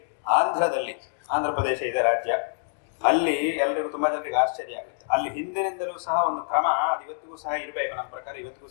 ಆಂಧ್ರ ಪ್ರದೇಶ ಇದೆ ರಾಜ್ಯ, ಅಲ್ಲಿ ಎಲ್ಲರಿಗೂ ತುಂಬಾ ಜನರಿಗೆ ಆಶ್ಚರ್ಯ ಆಗುತ್ತೆ. ಅಲ್ಲಿ ಹಿಂದಿನಿಂದಲೂ ಸಹ ಒಂದು ಕ್ರಮ ಅದು ಇವತ್ತಿಗೂ ಸಹ ಇರಬೇಕು, ನಮ್ಮ ಪ್ರಕಾರ ಇವತ್ತಿಗೂ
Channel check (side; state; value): right; silent; digital silence